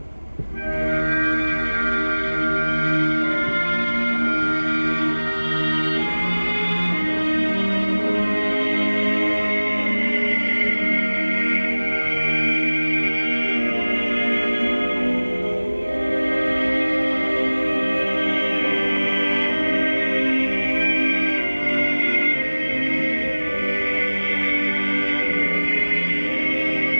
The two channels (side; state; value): both; inverted; correlation -1.00